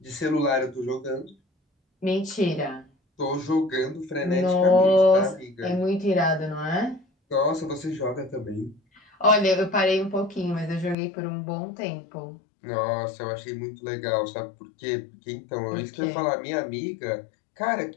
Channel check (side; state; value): right; drops out; at 11.0 s